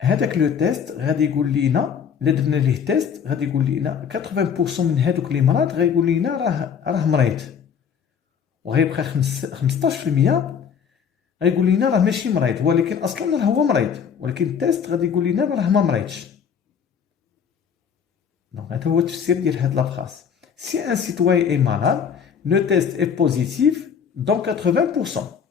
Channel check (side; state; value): right; quieter; 7.3 dB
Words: هذاك لو تيست غادي يقول لينا الا درنا ليه تيست غادي يقول لينا 80% من هذوك اللي مرض غايقول لينا راه مريض وغيبقى 15% غيقول لينا راه ماشي مريض ولكن اصلا راه هو مريض ولكن التيست غادي يقول لينا راه ما مريضش. دونك هذا هو التفسير ديال هاد لا فراس. Si un citoyen est malade, le test est positif dans